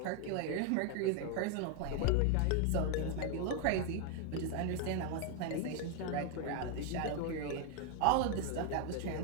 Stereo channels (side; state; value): both; different; correlation 0.01